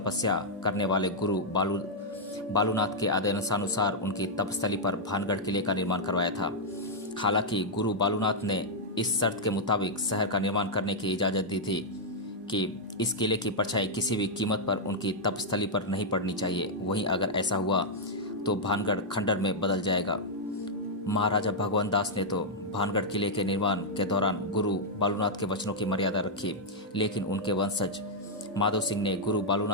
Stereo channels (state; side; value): normal; both; correlation -0.05